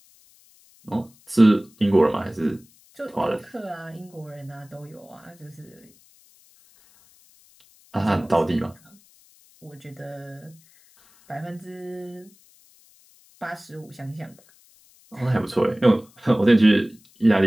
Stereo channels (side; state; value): left; noise; hiss, 29 dB below the sound